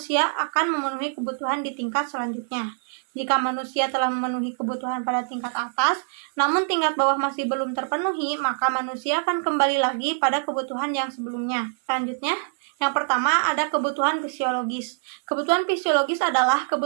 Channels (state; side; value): silent; left; 58 dB below the other